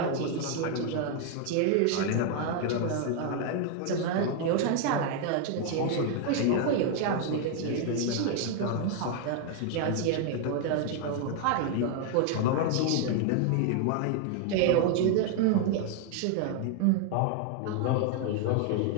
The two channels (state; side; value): different; both; correlation 0.00